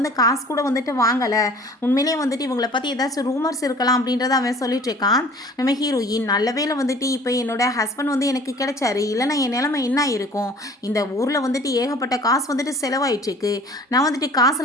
காசு கூட வந்துட்டு வாங்கலை, உண்மையிலேயே வந்துட்டு இவங்களை பற்றி ஏதாச்சும் ரூமர்ஸ் இருக்கலாம் அப்படின்றத அவன் சொல்லிட்டு இருக்கான். நம்ம ஹீரோயின் நல்ல வேளை வந்துட்டு இப்போ என்னோட ஹஸ்பண்ட் வந்து எனக்கு கிடைச்சாரு, இல்லைனா என் நிலைமை என்ன இருக்கும், இந்த ஊரில் வந்துட்டு ஏகப்பட்ட காசு வந்துட்டு செலவாயிட்டுருக்கு, நான் வந்துட்டு காசு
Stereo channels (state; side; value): normal; both; correlation 0.48